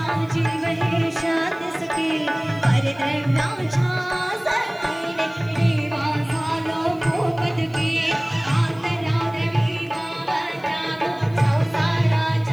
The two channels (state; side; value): noise; left; hiss, 30 dB below the sound